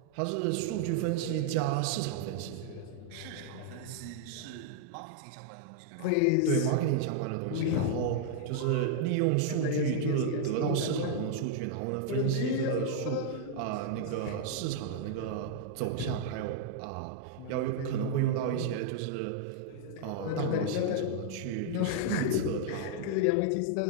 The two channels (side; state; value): both; different; correlation -0.01